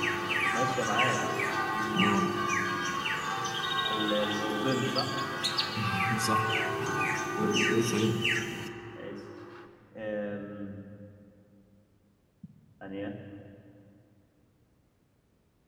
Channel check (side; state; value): both; identical; correlation 1.00